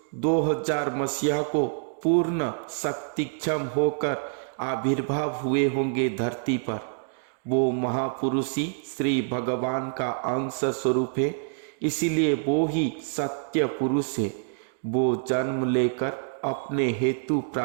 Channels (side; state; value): left; silent; digital silence